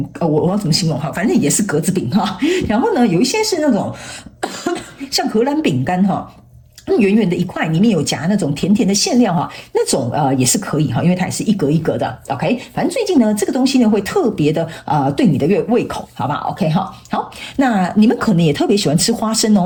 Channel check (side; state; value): both; identical; correlation 1.00